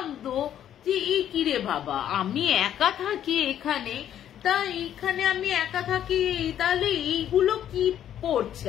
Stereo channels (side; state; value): right; quieter; 10.5 dB